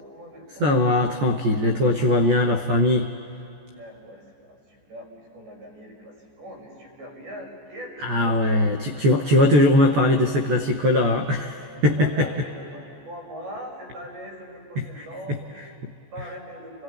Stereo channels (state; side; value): late; left; 14 ms